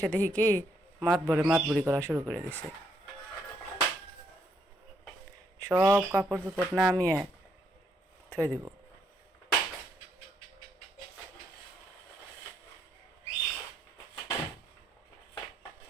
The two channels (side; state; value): both; normal; correlation 0.74